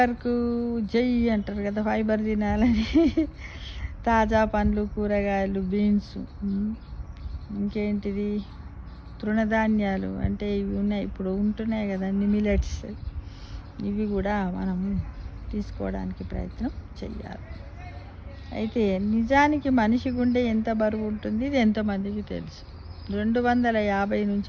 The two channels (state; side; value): identical; both; correlation 1.00